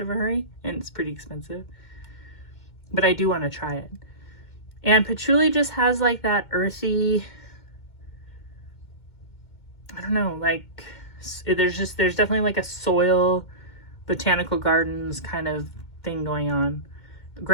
a hurry, and it's pretty expensive. But I do want to try it. And patchouli just has like that earthy, I don't know, like there's definitely like a soil, botanical gardens kind of thing going on.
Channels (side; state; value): right; late; 2.2 ms